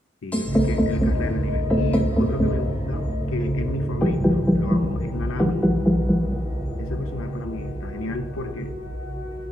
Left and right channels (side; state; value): both; normal; correlation 0.84